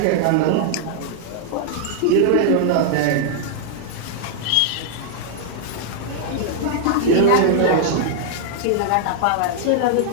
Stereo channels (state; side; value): different; both; correlation -0.01